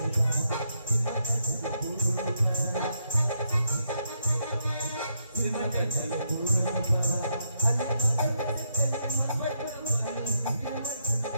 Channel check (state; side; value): inverted; both; correlation -0.79